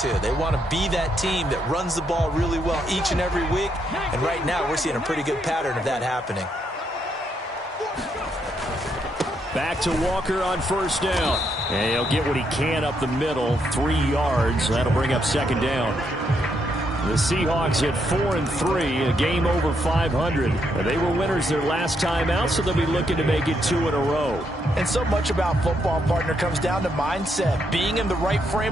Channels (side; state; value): both; normal; correlation 0.77